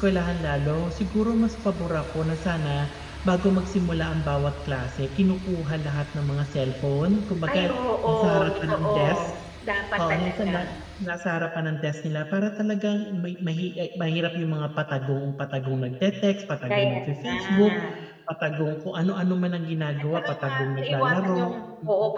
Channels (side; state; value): both; identical; correlation 1.00